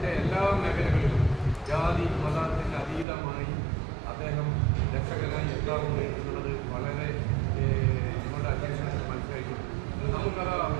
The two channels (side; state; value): left; drops out; at 3.1 s